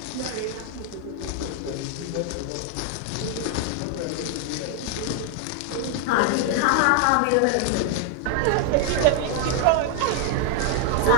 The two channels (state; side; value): different; both; correlation 0.00